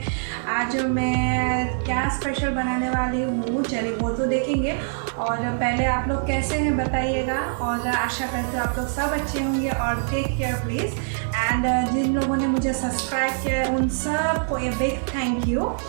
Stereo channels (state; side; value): silent; left; digital silence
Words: आज मैं क्या स्पेशल बनाने वाली हूँ चलिए वो तो देखेंगे। और पहले आप लोग कैसे हैं बताइएगा, और आशा करती हूँ आप लोग सब अच्छे होंगे। और टेक केयर प्लीज़। एंड जिन लोगों ने मुझे सब्सक्राइब किया है उन सबको a big thank you.